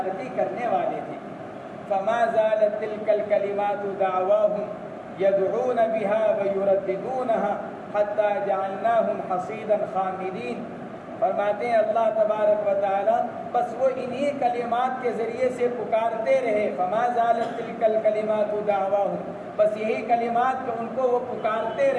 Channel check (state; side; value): identical; both; correlation 1.00